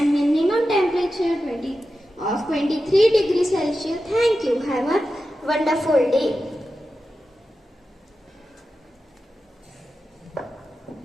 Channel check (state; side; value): normal; both; correlation 0.92